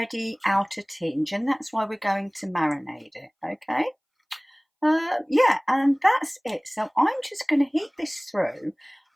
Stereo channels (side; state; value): both; identical; correlation 1.00